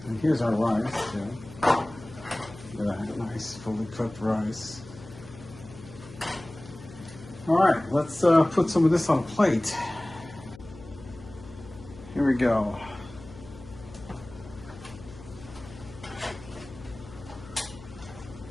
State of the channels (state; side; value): noise; left; hum, 17 dB below the sound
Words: and here's our rice. Look at that nice, fully cooked rice. All right, let's put some of this on a plate. Here we go.